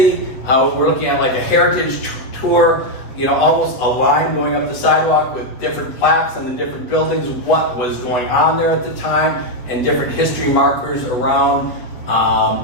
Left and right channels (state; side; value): late; right; 7.8 ms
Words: We're looking at like a heritage tour, almost a line going up the sidewalk with different plaques on the different buildings, what was going on there at the time, and different history markers around.